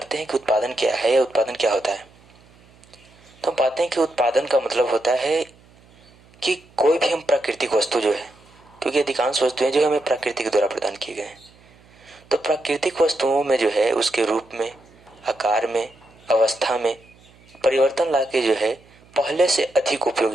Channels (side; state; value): right; noise; hum, 28 dB below the sound